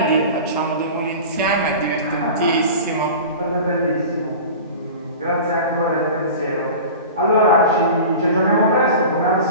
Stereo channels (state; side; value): inverted; both; correlation -0.35